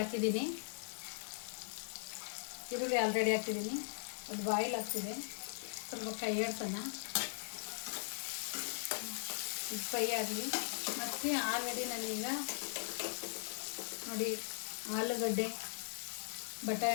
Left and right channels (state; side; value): silent; right; 51 dB below the other